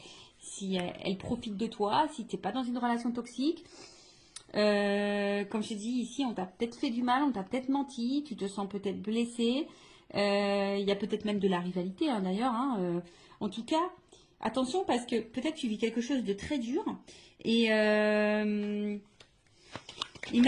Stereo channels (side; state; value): both; identical; correlation 1.00